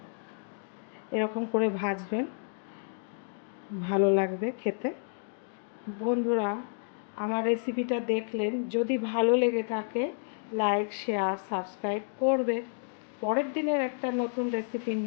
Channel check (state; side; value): silent; right; digital silence